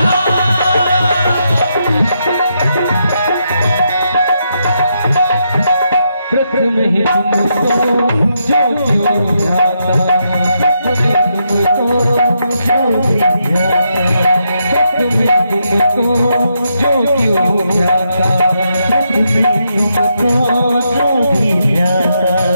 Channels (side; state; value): both; inverted; correlation -0.81